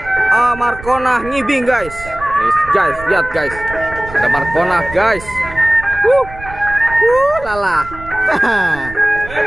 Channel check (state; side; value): noise; right; rumble, 15 dB below the sound